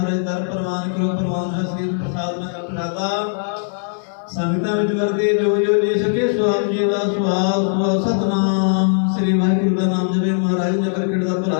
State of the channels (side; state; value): right; silent; digital silence